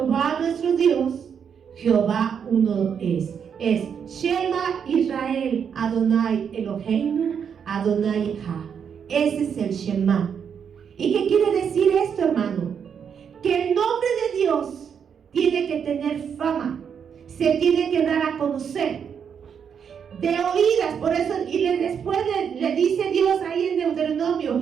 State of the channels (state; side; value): quieter; left; 7.3 dB